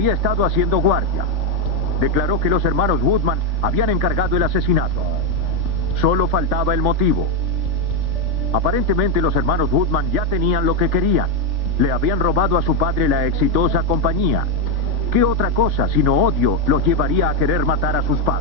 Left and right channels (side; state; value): left; late; 3.4 ms